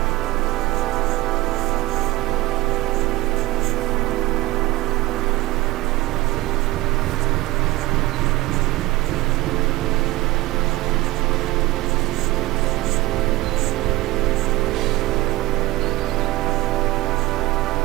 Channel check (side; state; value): left; quieter; 18.4 dB